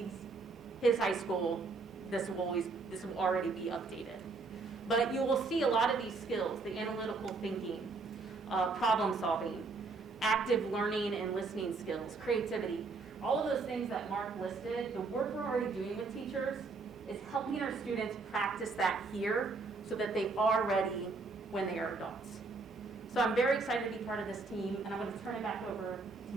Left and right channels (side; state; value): left; quieter; 4.0 dB